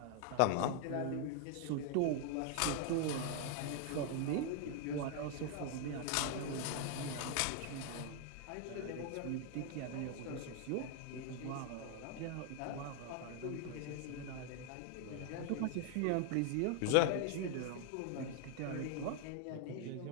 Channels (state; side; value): different; both; correlation 0.00